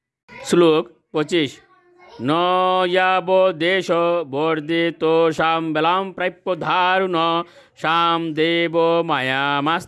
শ্লোক 25। ন যাব দেশ বর্ধিত শাম বেলাম প্রাপ্য ধারুণ শাম দেব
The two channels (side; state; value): both; identical; correlation 1.00